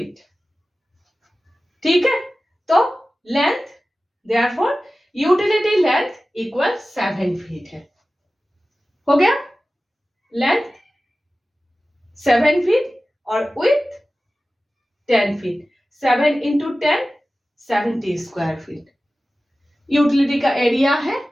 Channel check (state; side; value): normal; both; correlation 0.96